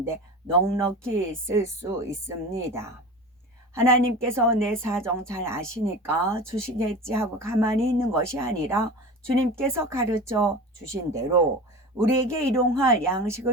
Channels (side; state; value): both; normal; correlation 0.32